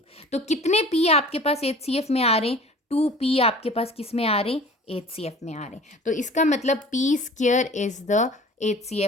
तो कितने पी आपके पास HCF में आ रहे हैं? 2p आपके पास किस में आ रहे हैं? HCF में आ रहे हैं। तो इसका मतलब p square is the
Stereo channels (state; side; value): normal; both; correlation 0.44